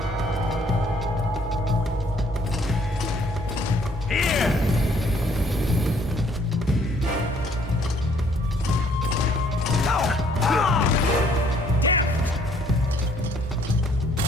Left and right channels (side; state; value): both; normal; correlation 0.63